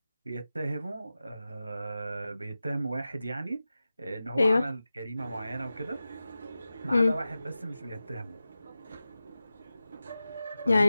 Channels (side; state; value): both; inverted; correlation -0.94